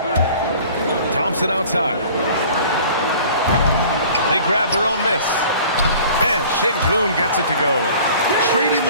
Thompson outside. They grab their own miss. And Şengün gets it to go. Trading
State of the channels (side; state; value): both; inverted; correlation -0.47